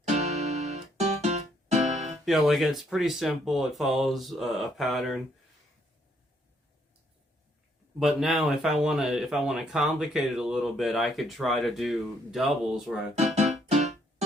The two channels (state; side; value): normal; both; correlation 0.70